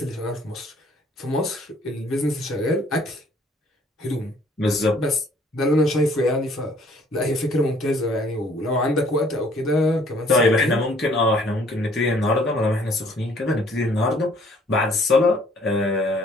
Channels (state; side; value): normal; both; correlation 0.60